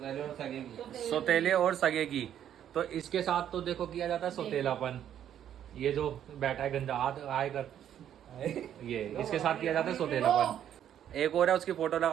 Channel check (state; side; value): quieter; left; 10.2 dB